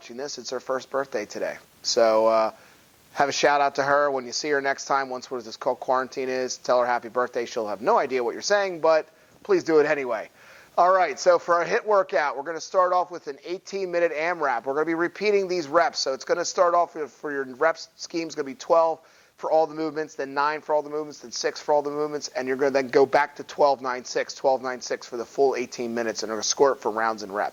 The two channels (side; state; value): both; identical; correlation 1.00